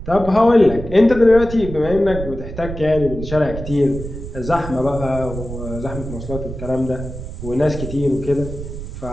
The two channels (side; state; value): right; noise; rumble, 9 dB below the sound